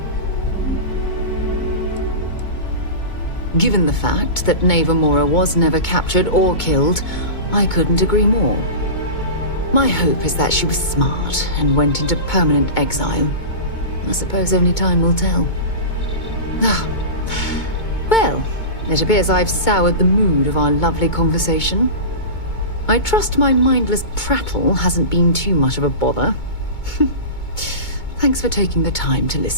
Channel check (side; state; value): right; late; 2.2 ms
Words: Given the fact that Navarmora was never captured or killed, I couldn't agree more. My hope is that she was smart and went into permanent exile. I suppose only time will tell. Ah. Well, it appears I've soured the mood of our lovely conversation. I trust my mindless prattle hasn't been too much of a bother. Thanks for taking the time to